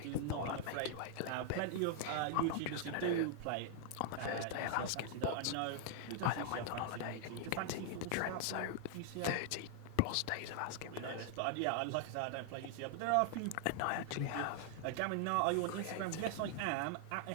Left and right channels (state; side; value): different; both; correlation 0.00